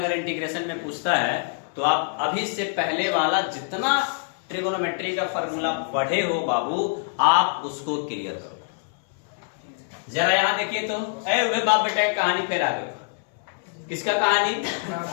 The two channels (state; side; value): silent; right; 60 dB below the other